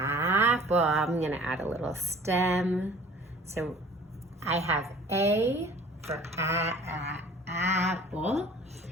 I'm gonna add a little stem. So I have A for apple.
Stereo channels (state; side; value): normal; both; correlation 0.48